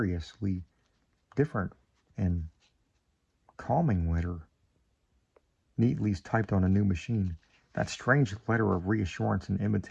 different and calming letter, neatly typed on a new machine. That strange letter of reassurance and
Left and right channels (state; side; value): identical; both; correlation 1.00